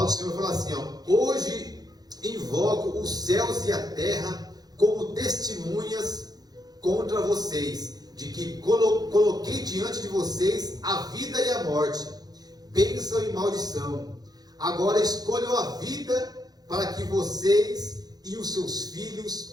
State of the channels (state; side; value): late; left; 0.19 ms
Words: do Senhor fala assim, hoje invoco os céus e a terra como testemunhas contra vocês, de que coloquei diante de vocês a vida e a morte, bênção e maldição. Agora escolham a vida para que vocês e os seus